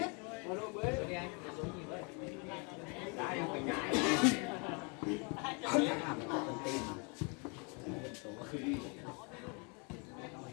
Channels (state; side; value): quieter; right; 33.8 dB